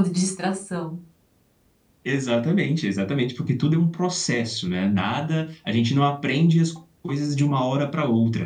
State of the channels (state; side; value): identical; both; correlation 1.00